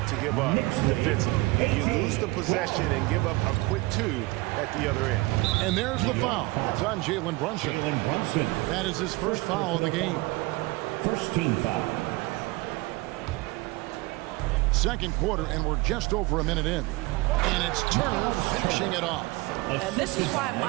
to give up defensively. You lose the possession and give up a quick 2 at the other end. And there's the foul. It's on Jalen Brunson. That is his first foul of the game. First team foul. Second quarter, and we're just over a minute in. And it's Turner finishing it off. And this is why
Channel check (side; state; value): left; quieter; 22.5 dB